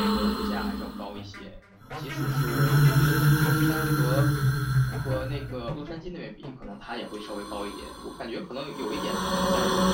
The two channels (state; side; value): identical; both; correlation 1.00